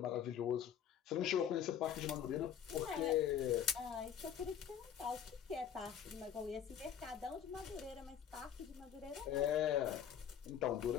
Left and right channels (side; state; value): right; quieter; 8.9 dB